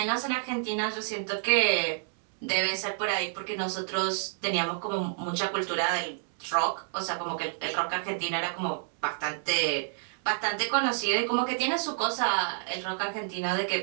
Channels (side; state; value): left; silent; 59 dB below the other